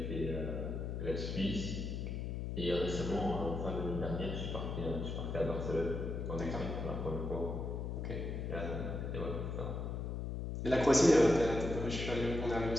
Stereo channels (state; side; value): noise; left; hum, 3 dB below the sound